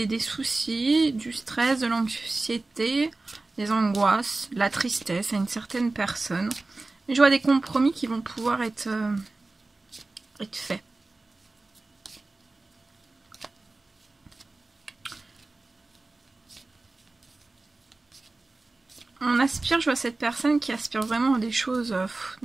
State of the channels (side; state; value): left; quieter; 3.3 dB